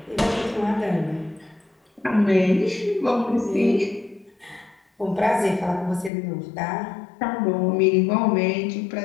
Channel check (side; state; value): right; drops out; at 6.1 s